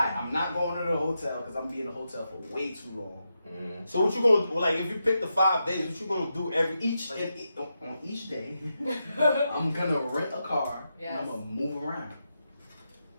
I'm not going to the hotel because I'm being in the hotel for way too long. So what you gonna do? Like if you pick the 5 days, what you gonna do On each day, I'm gonna rent a car and Yes. I'm gonna move around.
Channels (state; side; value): inverted; both; correlation -0.87